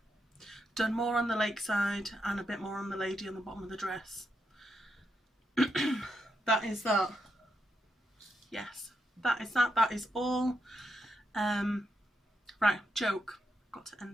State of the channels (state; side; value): normal; both; correlation 0.82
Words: done more on the lakeside, and a bit more on the lady on the bottom of the dress. That is that. Yes, that is that. That is all. Right, joke. Got to